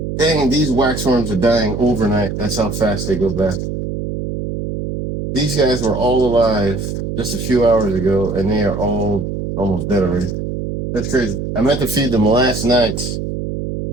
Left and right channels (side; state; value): right; noise; hum, 4 dB below the sound